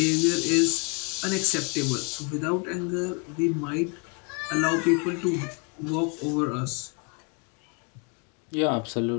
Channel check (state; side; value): quieter; right; 34.0 dB